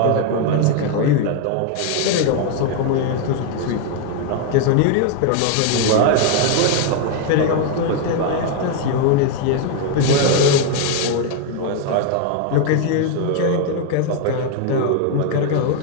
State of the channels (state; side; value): different; both; correlation 0.00